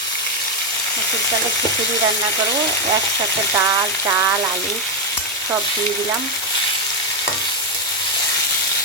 মসুর ডালের খিচুড়ি রান্না করব, একসাথে ডাল চাল আলু সব দিয়ে দিলাম।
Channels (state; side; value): normal; both; correlation 0.04